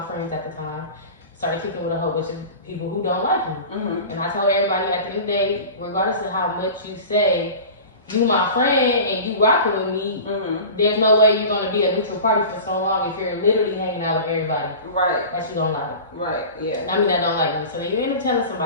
friends at the time started kicking with a whole bunch of people who don't like me. And I told everybody at the end of the day, regardless of how much you say, you my friend and you rocking with me, there's no way you're gonna be a neutral party for so long if you're literally hanging out with everybody. Right. That you don't like. Right, yeah. I mean, that don't like me. So then you end up telling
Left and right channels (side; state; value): both; inverted; correlation -0.36